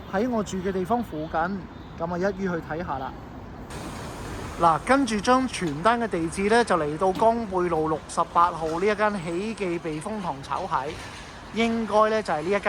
喺我住嘅地方附近，咁啊一於去睇下啦。嗱，跟住張傳單嘅地址呢，就嚟到江貝路68號呢一間喜記避風塘炒蟹，應該呢就係呢一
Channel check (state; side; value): identical; both; correlation 1.00